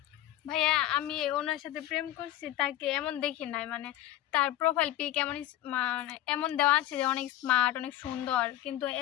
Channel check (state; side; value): quieter; right; 13.8 dB